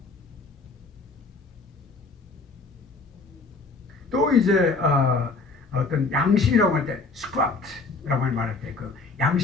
또 이제 어떤 양심이라고 할 때 script라고 말할 때 그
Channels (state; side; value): quieter; right; 3.9 dB